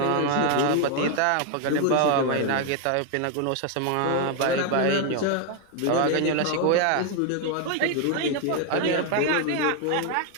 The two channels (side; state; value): both; different; correlation 0.01